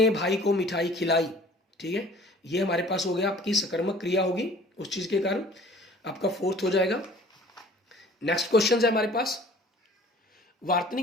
भाई को मिठाई खिलाई, ठीक है, ये हमारे पास हो गया आपकी सकर्मक क्रिया होगी उस चीज के कारण, आपका 4th हो जाएगा। नेक्स्ट क्वेश्चन है हमारे पास,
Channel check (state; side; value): normal; both; correlation 0.49